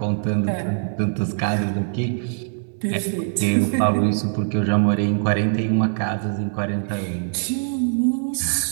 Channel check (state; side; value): silent; left; digital silence